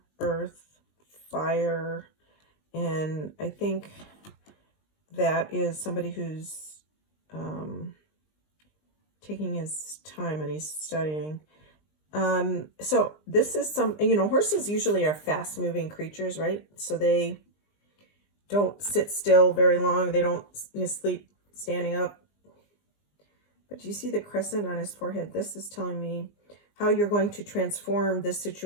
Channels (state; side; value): late; right; 20 ms